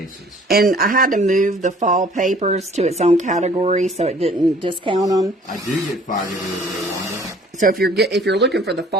And I had to move the fall papers to its own category so it didn't discount them. I do get fired every day, Wanda. So if you're looking for the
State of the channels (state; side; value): normal; both; correlation 0.54